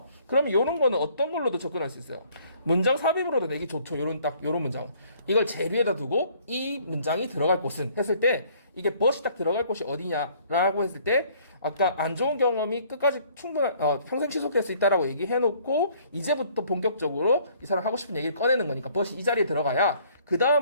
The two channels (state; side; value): inverted; both; correlation -0.60